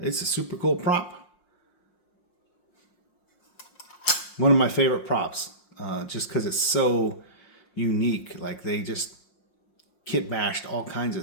a super cool prop. One of my favorite props, just because it's so unique. Like they just kit bashed all kinds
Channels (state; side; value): late; right; 5.6 ms